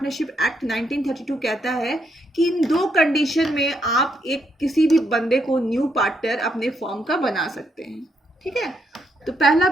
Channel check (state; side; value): normal; both; correlation 0.77